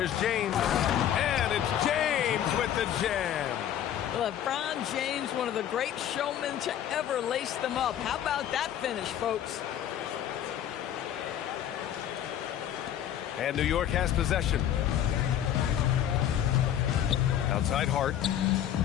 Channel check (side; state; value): right; quieter; 10.6 dB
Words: James. And it's James with the jam. LeBron James, one of the great showmen to ever lace them up. How about that finish, folks? And New York has possession. Outside Hart.